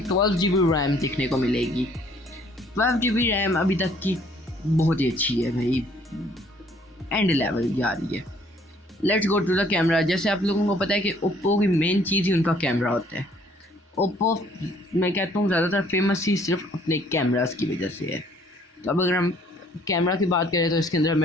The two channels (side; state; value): both; normal; correlation 0.61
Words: 12 GB RAM देखने को मिलेगी। 12 GB रैम अभी तक की बहुत ही अच्छी है भाई, एंड लेवल जा रही है। Let's go to the camera. जैसे आप लोगों को पता है कि ओप्पो की मेन चीज़ ही उनका कैमरा होता है। ओप्पो मैं कहता हूँ ज़्यादातर फेमस ही सिर्फ अपने कैमरास की वजह से है। तो अब अगर हम कैमरा की बात करें तो इसके अंदर